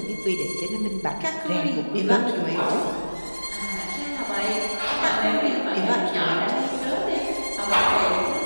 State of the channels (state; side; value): inverted; both; correlation -1.00